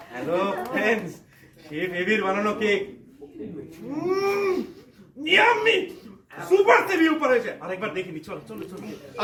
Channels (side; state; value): both; identical; correlation 1.00